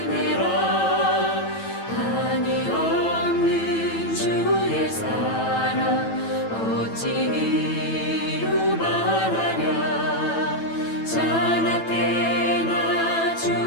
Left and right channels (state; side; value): late; right; 9.0 ms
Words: 한이 없는 주의 사랑 어찌 이루 말하랴. 자나때나